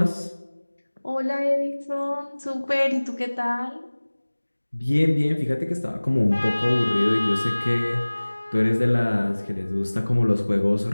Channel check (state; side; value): inverted; both; correlation -1.00